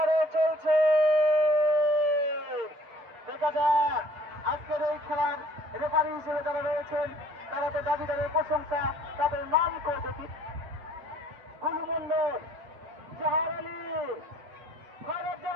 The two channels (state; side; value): late; left; 8.1 ms